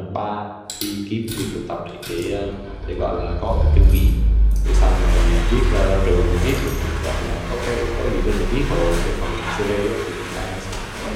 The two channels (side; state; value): both; identical; correlation 1.00